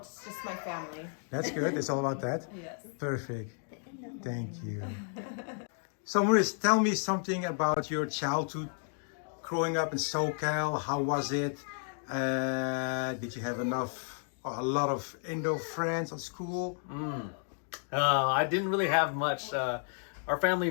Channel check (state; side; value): silent; right; 56 dB below the other